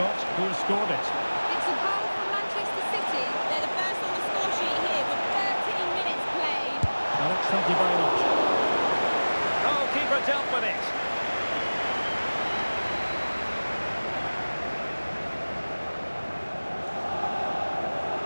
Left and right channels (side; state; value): both; inverted; correlation -1.00